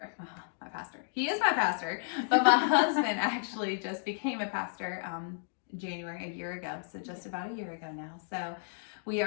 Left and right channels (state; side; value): silent; right; digital silence